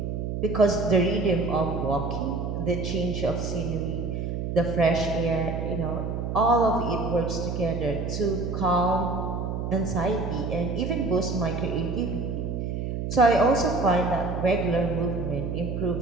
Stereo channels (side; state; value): right; noise; hum, 3 dB below the sound